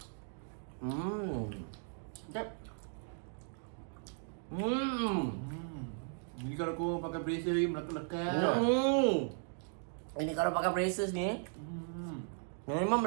Sekejap. Jadi kalau korang pakai bracer lagi melekat-lekat. Ini kalau pakai braces ni, memang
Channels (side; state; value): left; silent; 53 dB below the other